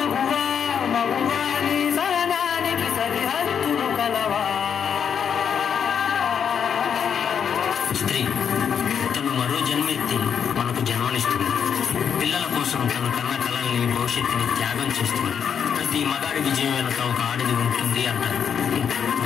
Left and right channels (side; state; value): right; quieter; 7.6 dB